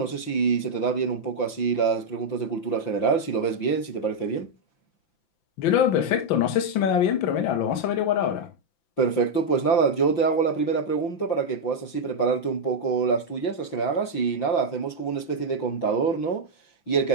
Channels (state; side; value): late; right; 5.9 ms